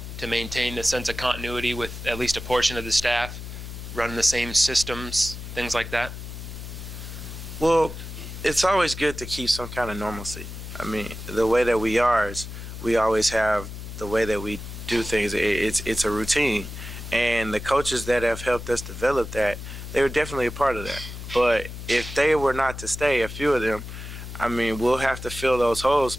to maintain a sense of continuity with at least a portion of the staff, running the same systems, things like that? Well, it's always good to keep some kind of normalcy. I mean, the way that we are is we always have the way that we do things. It's a routine. And the coaches that have helped us develop that, they were definitely a part of that. But if they were not to stay, a few of them, I mean, we'll have to fill those holes.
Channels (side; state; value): left; noise; hum, 10 dB below the sound